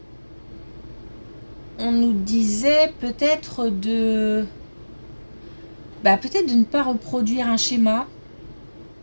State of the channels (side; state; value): both; inverted; correlation -1.00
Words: on nous disait peut-être peut-être de ne pas reproduire un schéma